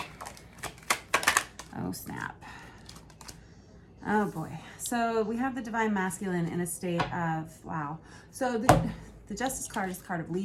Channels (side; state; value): both; identical; correlation 1.00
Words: Oh, snap. Oh, boy. So we have the Divine Masculine in a state of, wow. So the Justice card is the card of